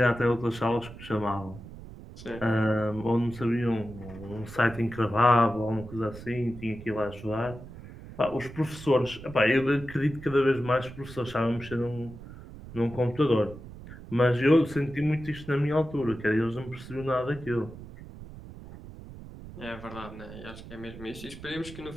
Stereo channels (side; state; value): right; noise; rumble, 15 dB below the sound